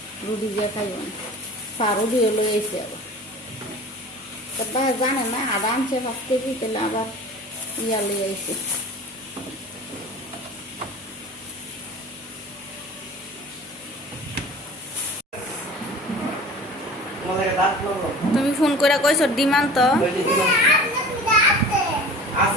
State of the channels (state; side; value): normal; both; correlation 0.40